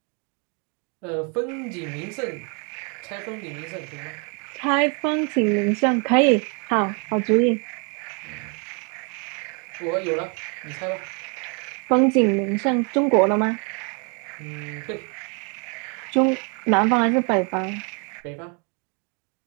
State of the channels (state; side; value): quieter; left; 35.6 dB